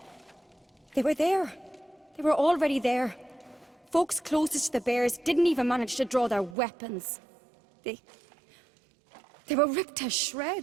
They were there. They were already there. Folks closest to the bears didn't even manage to draw their weapons. They were ripped to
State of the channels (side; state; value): left; drops out; at 6.6 s